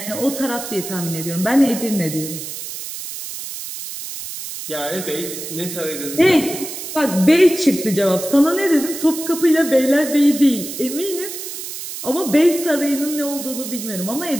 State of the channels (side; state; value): right; noise; hiss, 8 dB below the sound